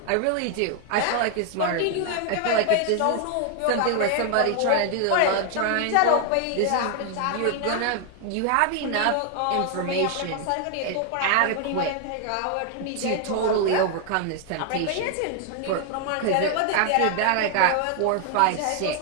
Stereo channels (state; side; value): different; both; correlation 0.00